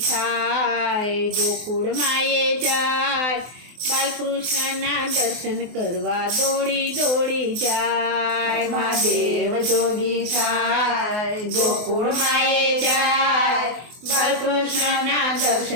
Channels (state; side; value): late; left; 24 ms